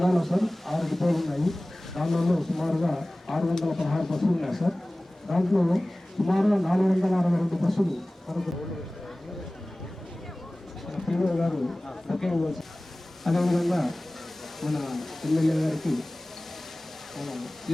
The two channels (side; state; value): both; normal; correlation 0.98